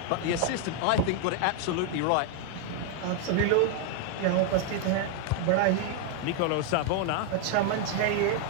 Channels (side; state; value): both; different; correlation 0.00